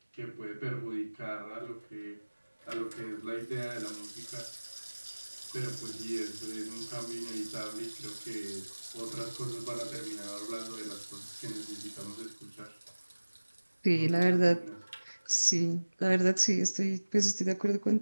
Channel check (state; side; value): inverted; both; correlation -1.00